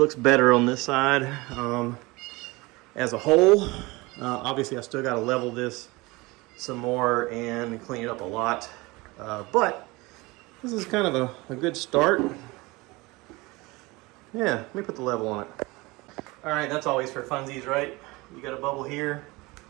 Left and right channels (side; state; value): left; quieter; 23.0 dB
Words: better on this side as a whole. Obviously, I still gotta level this some more and clean it up a lot. But this is kind of a good start. Yeah, let me put the level on it. All right, that's always for funsies, right? You got a bubble here.